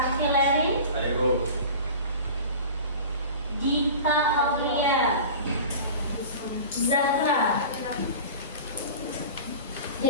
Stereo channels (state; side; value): inverted; both; correlation -0.36